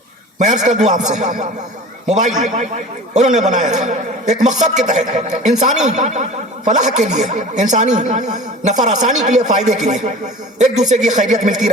میں عرض کر دوں آپ سے, موبائل انہوں نے بنایا تھا ایک مقصد کے تحت, انسانی فلاح کے لیے, انسانی نفع آسانی کے لیے, فائدے کے لیے, ایک دوسرے کی خیریت ملتی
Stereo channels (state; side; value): normal; both; correlation 0.39